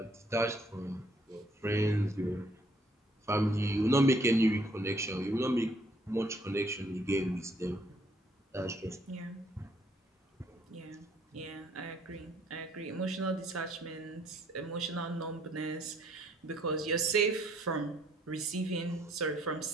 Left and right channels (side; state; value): both; normal; correlation 0.65